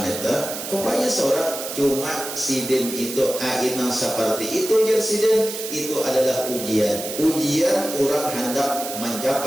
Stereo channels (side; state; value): right; noise; hiss, 7 dB below the sound